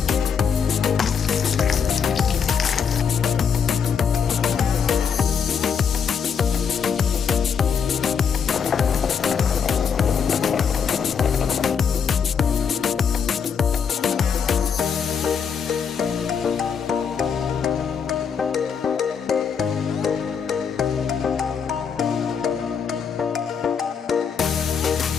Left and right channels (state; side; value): quieter; right; 6.8 dB